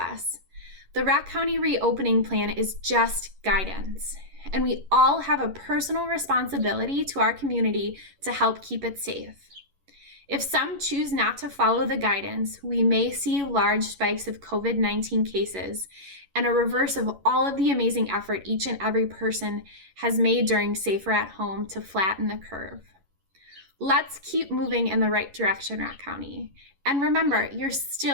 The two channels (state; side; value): late; left; 11 ms